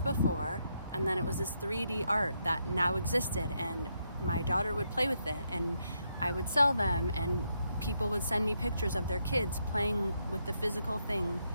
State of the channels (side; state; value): both; inverted; correlation -0.79